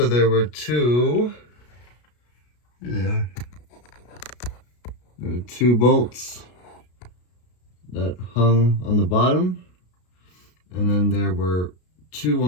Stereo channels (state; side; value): late; right; 33 ms